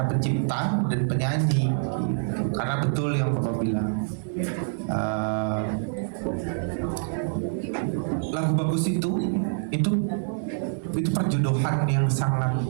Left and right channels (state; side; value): silent; left; digital silence